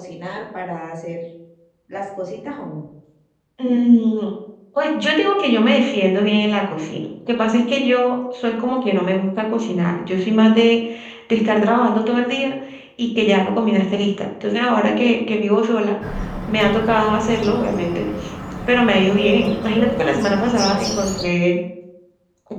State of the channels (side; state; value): both; identical; correlation 1.00